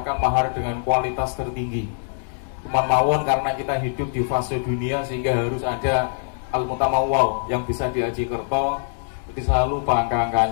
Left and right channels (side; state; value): right; silent; digital silence